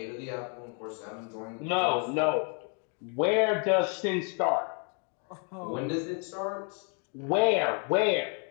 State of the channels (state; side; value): quieter; right; 39.0 dB